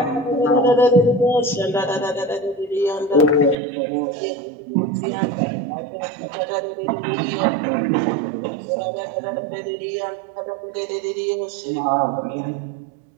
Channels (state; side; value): drops out; left; at 3.6 s